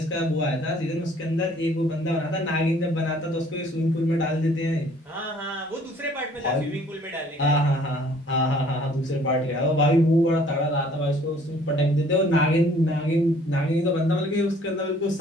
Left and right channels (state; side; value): normal; both; correlation 0.57